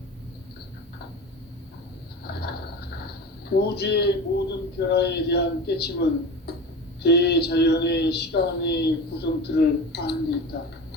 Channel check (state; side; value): normal; both; correlation 0.31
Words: 우주의 모든 변화에 대한 깨침은 대자연의 시간의 구성틀을 아는 데 있다.